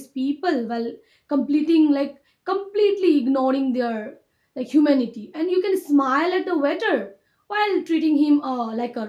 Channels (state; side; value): identical; both; correlation 1.00